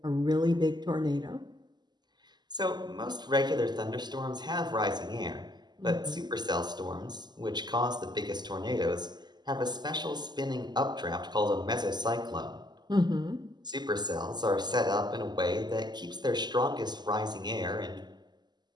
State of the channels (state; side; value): late; left; 0.21 ms